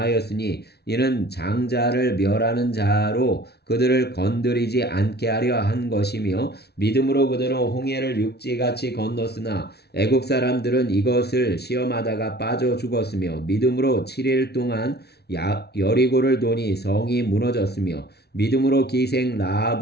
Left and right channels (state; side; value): late; right; 0.48 ms